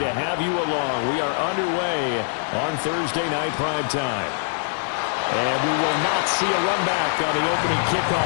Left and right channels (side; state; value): right; silent; 63 dB below the other